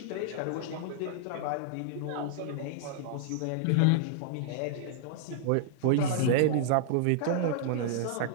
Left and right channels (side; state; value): both; different; correlation -0.01